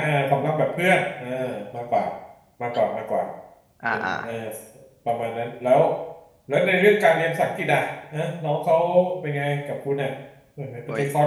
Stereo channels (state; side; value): identical; both; correlation 1.00